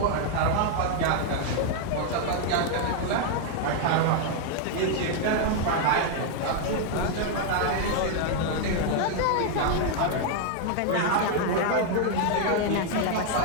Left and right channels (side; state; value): both; different; correlation 0.00